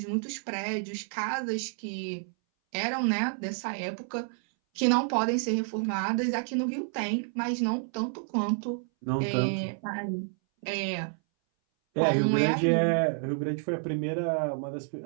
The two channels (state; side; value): silent; left; 58 dB below the other